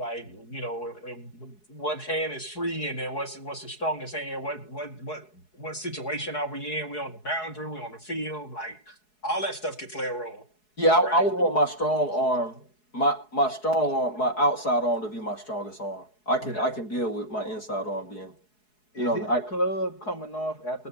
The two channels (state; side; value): late; right; 4.7 ms